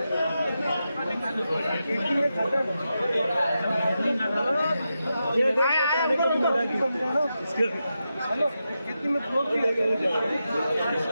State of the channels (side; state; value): both; inverted; correlation -0.88